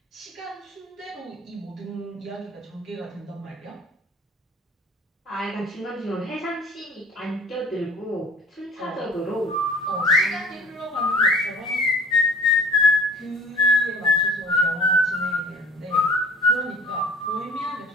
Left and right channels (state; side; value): normal; both; correlation 0.47